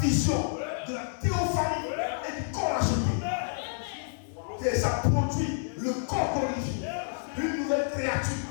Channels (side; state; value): right; silent; 59 dB below the other